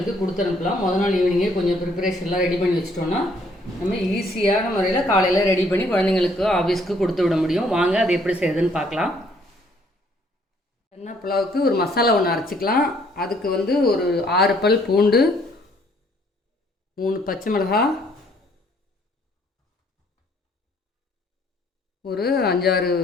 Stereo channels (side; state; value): both; normal; correlation 0.64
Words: கொடுத்து அனுப்பலாம். முதல் நாள் ஈவினிங்கே கொஞ்சம் ப்ரிப்பரேஷன்லாம் ரெடி பண்ணி வச்சிட்டோன்னா நம்ம ஈஸியான முறையில் காலையில் ரெடி பண்ணி குழந்தைங்களுக்கு ஆஃபீஸ்க்கு கொடுத்து விட முடியும். வாங்க அது எப்படி செய்யுதுன்னு பார்க்கலாம். சன்னா புலாவுக்கு ஒரு மசாலா ஒன்று அரைச்சிக்கலாம். அதுக்கு ஒரு 6 பல் பூண்டு, 3 பச்சை மிளகாய், ஒரு 5-6